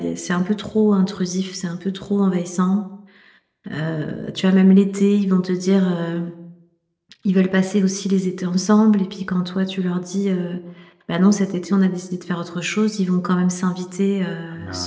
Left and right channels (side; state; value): both; identical; correlation 1.00